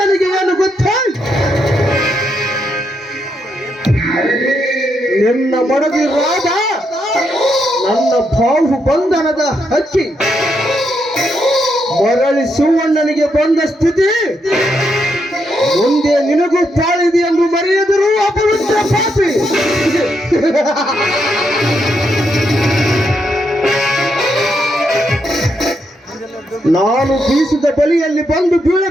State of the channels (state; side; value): normal; both; correlation 0.80